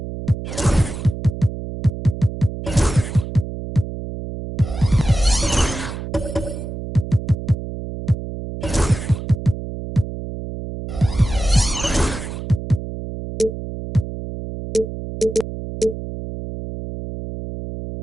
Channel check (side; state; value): right; noise; hum, 8 dB below the sound